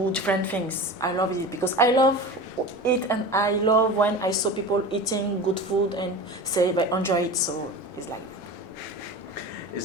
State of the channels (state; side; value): normal; both; correlation 0.31